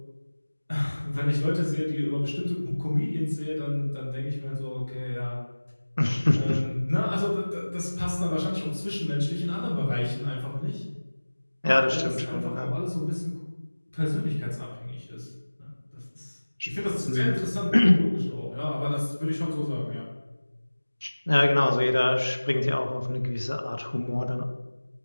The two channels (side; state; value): both; inverted; correlation -1.00